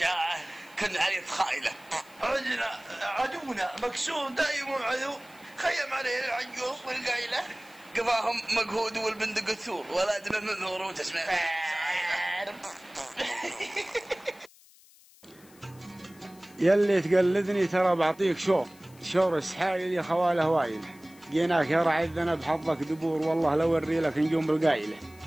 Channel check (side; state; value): left; noise; hiss, 26 dB below the sound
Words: كن عليه تخايله. عدونا مكسور دايم عدو، خيم عليه العجوز والقايله. قفاهم مقهود والبندق الثور، ولا دمه منذور وتسمع يلي تقلدني ترى بعطيك شور السحايل يا خواله وايل. جيناك يا رعي الذنب حظك دبور، والله لو وري لك نجوم بالقايله.